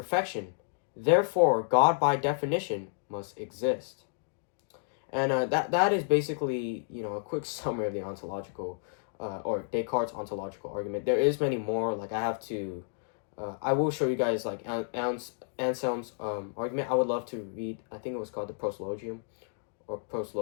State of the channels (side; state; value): right; silent; digital silence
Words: Therefore, God by definition must exist. And that is basically, a quick summary of the ontological or Descartes' ontological argument. There is many more. Like I have to I will show you guys like Anselm's argument. I would love to read. I think it was called the Proslogium or